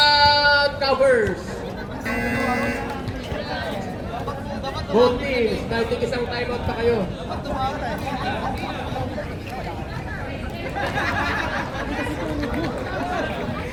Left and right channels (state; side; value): identical; both; correlation 1.00